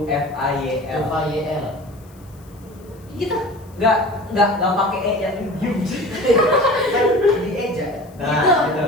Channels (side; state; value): left; noise; hiss, 29 dB below the sound